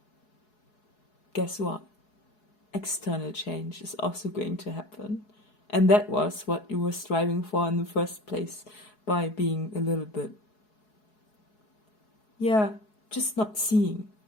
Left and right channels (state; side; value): late; right; 4.7 ms